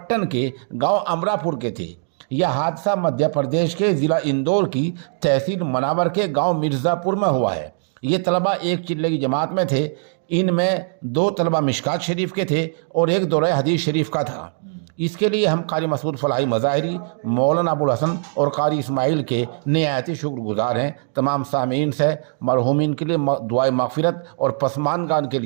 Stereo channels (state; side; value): silent; left; 65 dB below the other